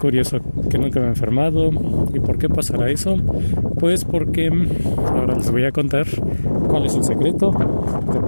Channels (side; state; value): both; inverted; correlation -1.00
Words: que nunca me he enfermado. ¿Y por qué pasará eso? Pues porque ahora les voy a contar cuál es el secreto de